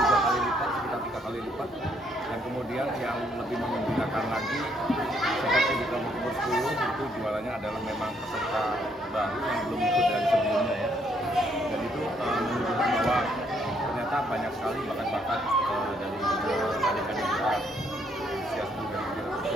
kali lipat, sekitar 3 kali lipat. Dan kemudian yang lebih menggembirakan lagi, seperti di kelompok umur 10 itu jualannya adalah memang peserta baru yang belum ikut dari sebelumnya ya. Dan itu menunjukkan bahwa ternyata banyak sekali bakat-bakat dari adik-adik kita usia 10 dan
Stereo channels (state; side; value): normal; both; correlation 0.70